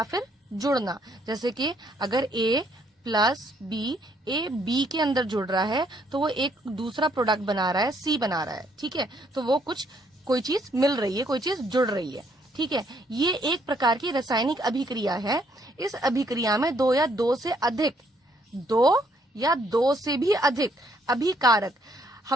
फिर जुड़ना। जैसे कि अगर A plus B, A B के अंदर जुड़ रहा है तो वो एक दूसरा प्रोडक्ट बना रहा है, C बना रहा है। ठीक है, तो वो कोई चीज मिल रही है, कोई चीज जुड़ रही है। ठीक है, ये एक प्रकार की रासायनिक अभिक्रिया है। इस अभिक्रिया में दो या दो से भी अधिक अभिकारक,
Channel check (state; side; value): normal; both; correlation 0.69